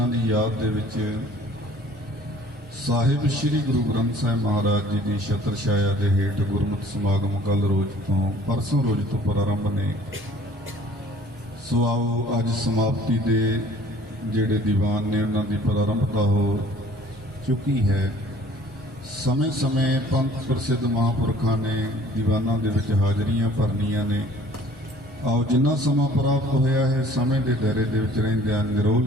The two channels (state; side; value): normal; both; correlation 0.53